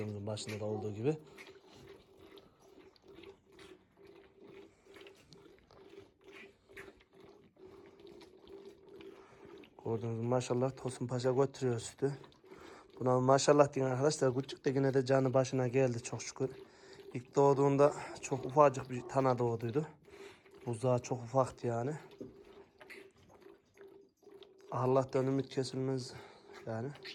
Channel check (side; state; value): both; identical; correlation 1.00